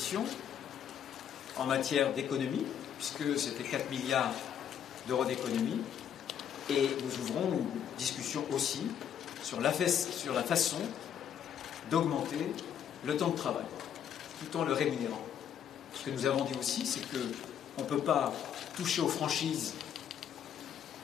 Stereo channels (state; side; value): quieter; right; 9.0 dB